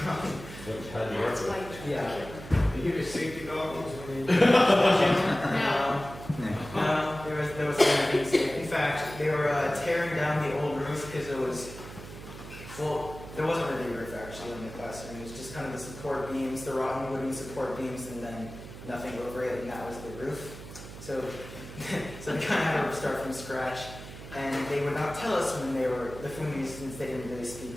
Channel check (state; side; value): noise; right; hum, 13 dB below the sound